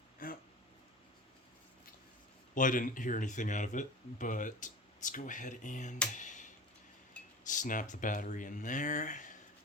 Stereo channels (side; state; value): both; normal; correlation 0.35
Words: Well, I didn't hear anything out of it, but let's go ahead and snap the battery in there.